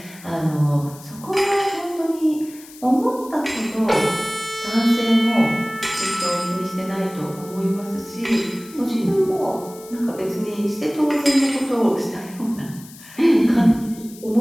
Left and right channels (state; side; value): noise; left; hiss, 20 dB below the sound